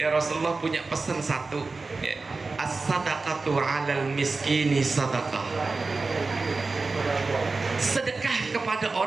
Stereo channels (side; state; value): left; quieter; 3.9 dB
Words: ya Rasulullah punya pesan satu, ya. As-sadaqatu 'alal miskini sadaqah. Sedekah kepada